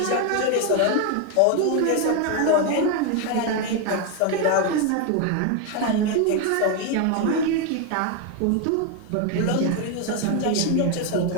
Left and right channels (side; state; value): both; different; correlation 0.01